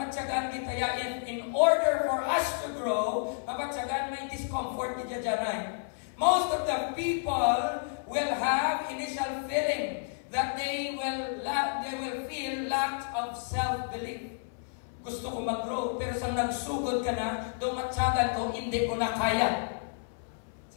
kita in order for us to grow, mapatsagan may discomfort kita dyan. Most of the people will have initial feeling that they will feel lack of self-belief. Gusto ko mag-grow, pero sa nagsugod ka na, tumatsagan ko, hindi ko na kaya.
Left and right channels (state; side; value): silent; right; 57 dB below the other